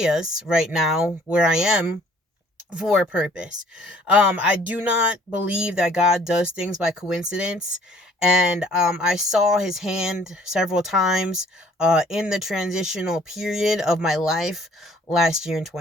right now where I am for a purpose. I do not believe that God does things by coincidence. And I saw his hand several times in the transitional period of my life last year in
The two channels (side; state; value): both; normal; correlation 0.57